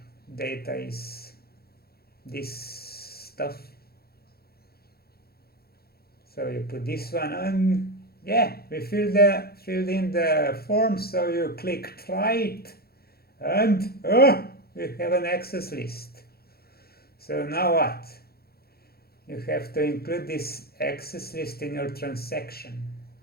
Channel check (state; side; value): late; right; 0.45 ms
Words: is this stuff. So you put this one, and yeah, we filled in the form. So you click try it, and we have an access list. So now what? You have to include this access list in your transaction,